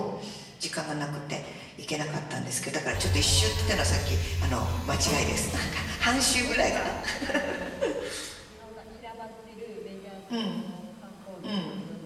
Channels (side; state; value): both; identical; correlation 1.00